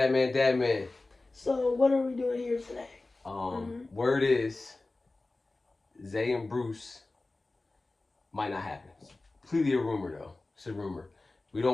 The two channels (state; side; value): quieter; right; 3.2 dB